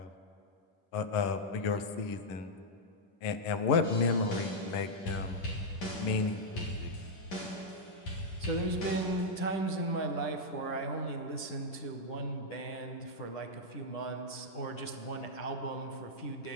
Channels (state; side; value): late; right; 10 ms